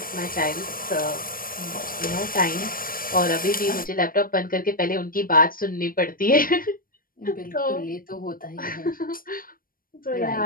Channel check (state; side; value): late; right; 0.41 ms